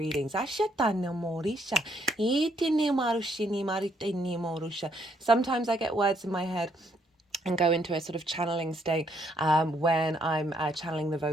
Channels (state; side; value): normal; both; correlation 0.71